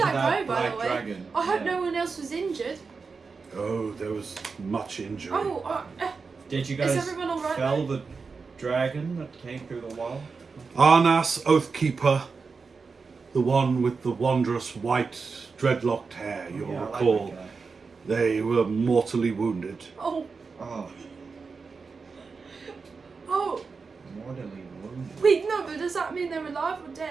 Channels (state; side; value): quieter; left; 4.8 dB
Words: to that that go, by black the way? dragon? I hope Yeah. no one else was injured. Oh, there was much injury. Oh, Did you is guys everyone alright? fell the dragon that came through the wall? Arnas Oathkeeper, the one with the wondrous white dreadlocked hair, you'll Yeah, I like recall, that guy. they were mortally wounded. Oh, Oh, oh. mortally wounded. Wait, no, but does that mean they're alive or